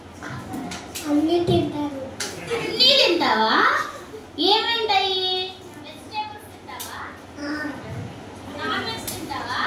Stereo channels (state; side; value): identical; both; correlation 1.00